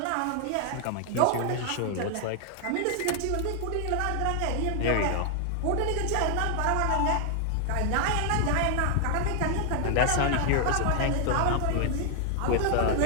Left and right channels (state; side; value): different; both; correlation 0.00